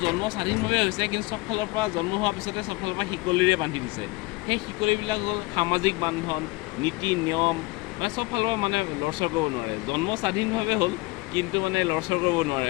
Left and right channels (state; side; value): quieter; right; 23.0 dB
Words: জন্ম স্বাধীনভাৱে হৈছে কিন্তু চব ফালৰ পৰা জন্ম হোৱাৰ পিছতে চব ফালৰ পৰা শিকলিৰে বান্ধি দিছে সেই শিকলিবিলাক হ'ল সামাজিক বান্ধন নীতি নিয়ম মানে চব ফালৰ পৰা মানে লৰচৰ কৰিব নোৱাৰে জন্ম স্বাধীনভাৱে হ'ল কিন্তু মানে লৰচৰ কৰিব